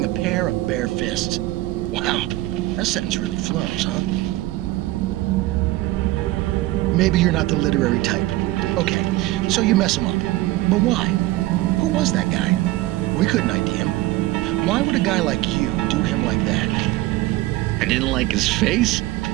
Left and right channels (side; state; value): left; quieter; 17.6 dB